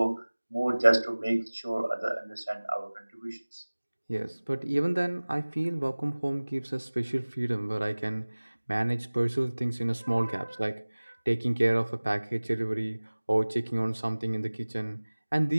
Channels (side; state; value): both; inverted; correlation -1.00